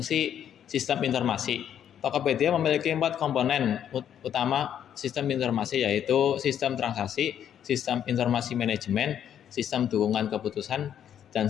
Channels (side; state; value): right; quieter; 9.6 dB